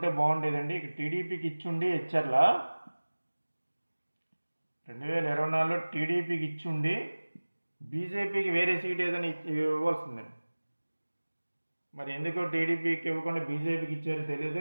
బాగుండేదండి. ఇక టీడీపీకి ఇచ్చుండి హెచ్ఆర్ల 2024లో టీడీపీకి ఇచ్చుండి బీజేపీకి వేరే సీట్ ఏదైనా ఇవ్వాల్సిందండి. మరి ఎందుకు టీడీపీకి ఇవ్వకుండా బీజేపీకి ఇచ్చారో తెలియదు.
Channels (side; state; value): both; inverted; correlation -1.00